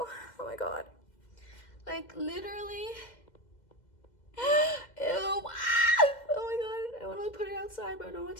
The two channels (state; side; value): late; right; 2.1 ms